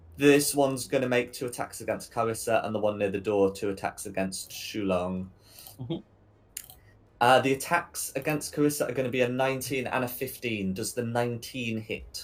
This one's going to make 2 attacks against Carissa, and the one near the door 2 attacks against Shulong. Mm-hmm. The attacks against Carissa are going to be a 19 and a 15. Does the 19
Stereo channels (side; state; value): both; identical; correlation 1.00